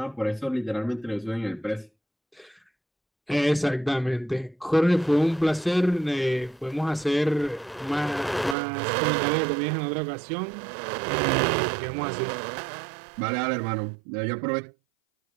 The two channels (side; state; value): left; drops out; at 8.6 s